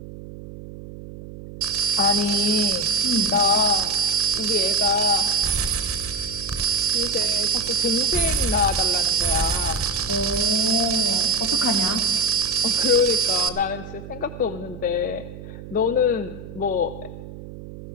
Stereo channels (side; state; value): right; noise; hum, 14 dB below the sound